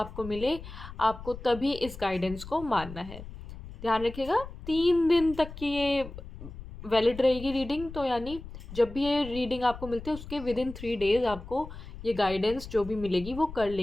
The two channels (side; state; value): left; noise; rumble, 13 dB below the sound